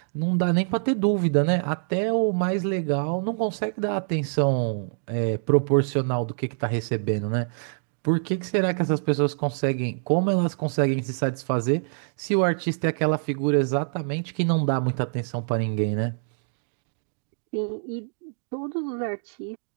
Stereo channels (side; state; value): left; silent; digital silence